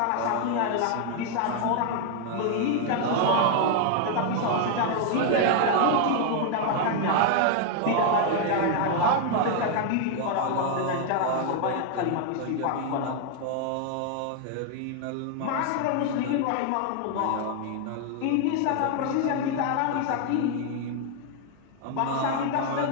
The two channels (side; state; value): both; different; correlation 0.00